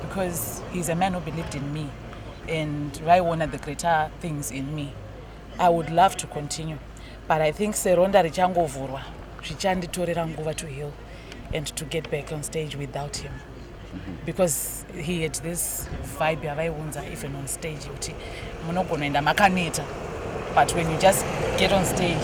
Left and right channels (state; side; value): identical; both; correlation 1.00